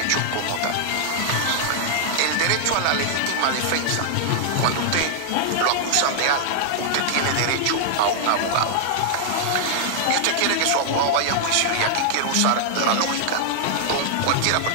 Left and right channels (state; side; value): different; both; correlation -0.01